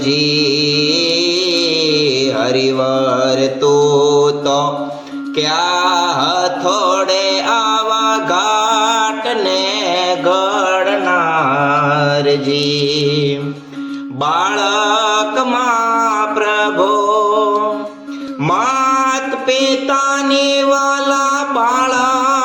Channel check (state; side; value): identical; both; correlation 1.00